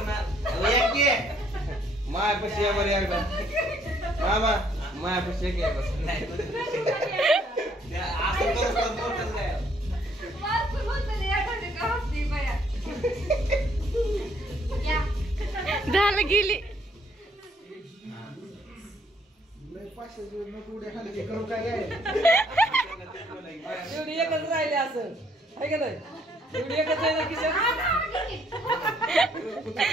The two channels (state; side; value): normal; both; correlation 0.66